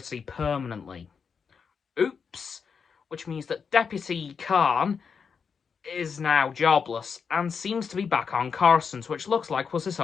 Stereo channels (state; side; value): quieter; right; 6.1 dB